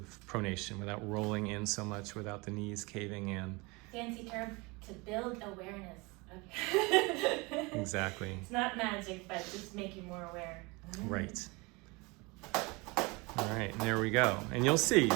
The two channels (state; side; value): quieter; left; 26.3 dB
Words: pronation, without rolling in so much, without the knees caving in. Fancy term, to build awareness. Okay. Exactly. It's not magic, but just make you more aware. Right. All right, and there we go. And you'll see